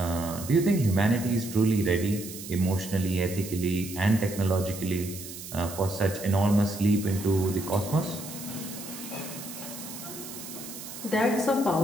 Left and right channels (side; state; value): right; noise; hiss, 12 dB below the sound